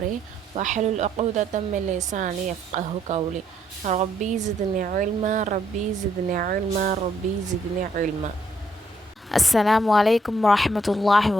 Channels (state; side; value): normal; both; correlation 0.72